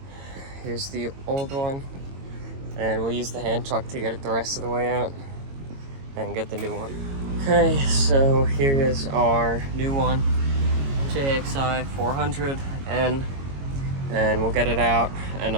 Here's the old one, and we'll use the hand truck to get it the rest of the way out and get the new one. Okay, so here is our new one, JXI400N, and we'll get it out and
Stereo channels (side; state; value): left; late; 22 ms